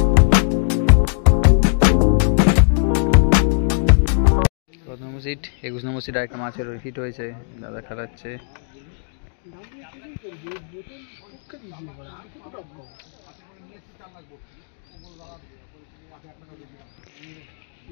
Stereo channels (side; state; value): right; silent; 65 dB below the other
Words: নম্বর সিট 21 নম্বর সিট একটা মাছের হিট হয়েছে, দাদা খেলাচ্ছে।